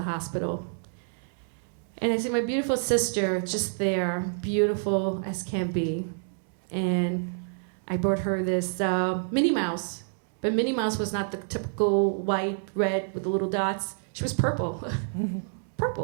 hospital. And I see my beautiful sister just there, beautiful as can be. And I brought her this Minnie Mouse. But Minnie Mouse was not the typical white, red with the little dots. She was purple.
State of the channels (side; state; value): left; silent; 59 dB below the other